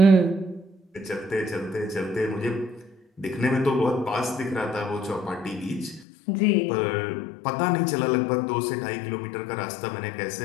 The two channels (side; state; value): right; drops out; at 6.1 s